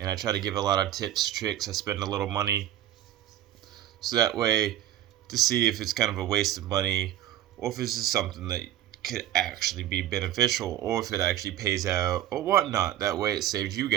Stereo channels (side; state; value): left; quieter; 12.2 dB